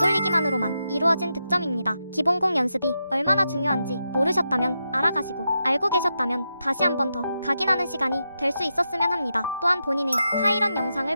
이루어진 득점입니다. 기본공 연습이 얼마나 중요한지 모르셨다면 알아가시고, 알고 계셨다면 다시 한 번 더 각인하는 시간이 될 수 있었으면 합니다. 또한 본인의 하이런 영상을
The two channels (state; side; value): inverted; both; correlation -0.87